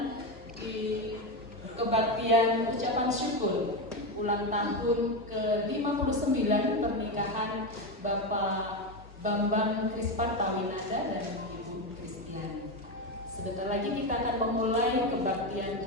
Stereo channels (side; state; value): both; normal; correlation 0.13